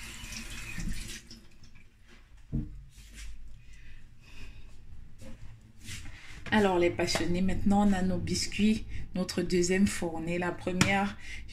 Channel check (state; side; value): identical; both; correlation 1.00